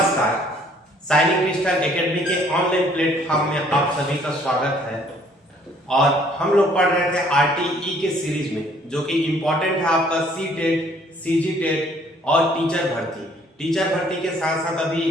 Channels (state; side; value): normal; both; correlation 0.60